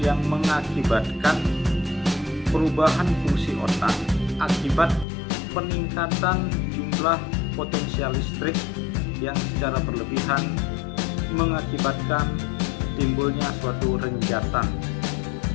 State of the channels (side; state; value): right; drops out; at 5.1 s